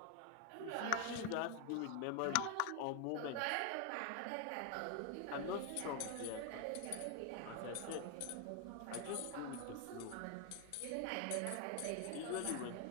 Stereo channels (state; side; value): different; both; correlation 0.01